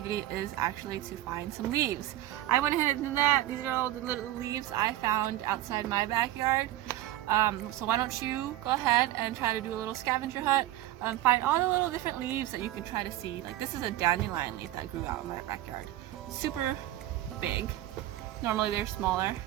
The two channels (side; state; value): left; quieter; 14.7 dB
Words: is actually to find some leaves. I went ahead and did that. These are all the little leaves I found outside my backyard. So why don't you go ahead and try to do a little scavenger hunt, find all the little different leaves that you can try to see. Like this is a dandelion leaf that grew out in my backyard. Super big. Normally they're smaller,